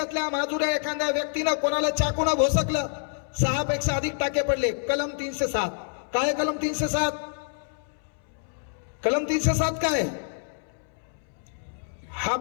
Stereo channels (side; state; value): right; silent; 60 dB below the other